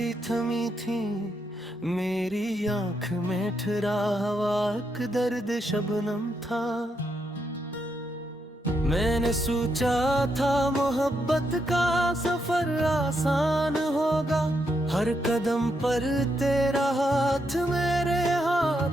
थमी थी। मेरी आंख में ठहरा हवा एक दर्द शबनम था। मैंने सोचा था मोहब्बत का सफर आसान होगा, हर कदम पर तेरा हाथ मेरे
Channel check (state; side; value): normal; both; correlation 0.80